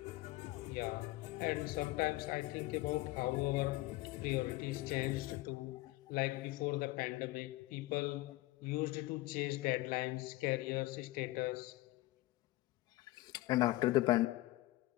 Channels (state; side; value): quieter; right; 18.9 dB